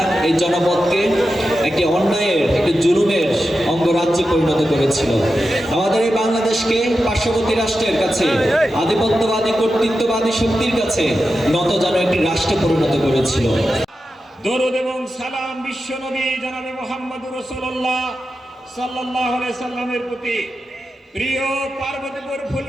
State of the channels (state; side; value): normal; both; correlation 0.91